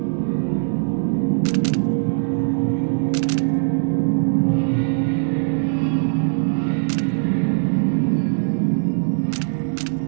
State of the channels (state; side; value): silent; left; 64 dB below the other